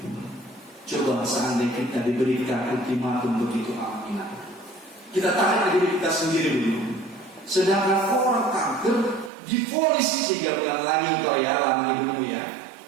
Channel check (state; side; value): drops out; left; at 9.3 s